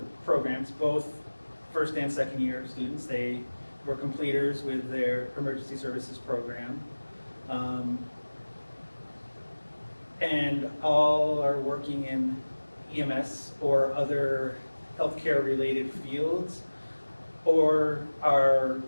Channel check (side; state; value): both; inverted; correlation -1.00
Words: of programs, both first and second year students. They were completers with their emergency services program. And all are working in EMS or other healthcare related fields, or are